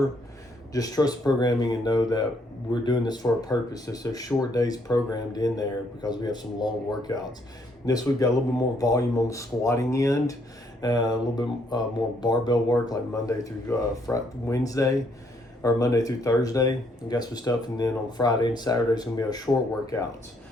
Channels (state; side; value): normal; both; correlation 0.70